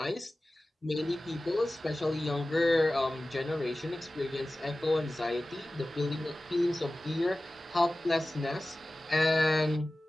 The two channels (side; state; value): both; normal; correlation 0.96